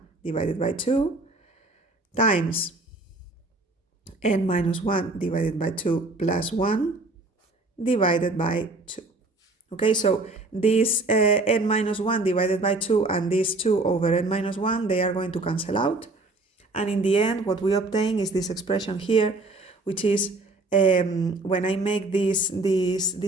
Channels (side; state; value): left; quieter; 3.1 dB